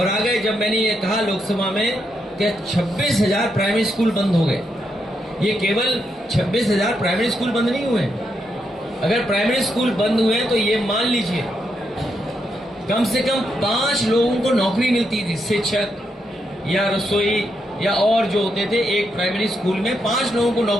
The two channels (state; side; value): normal; both; correlation 0.81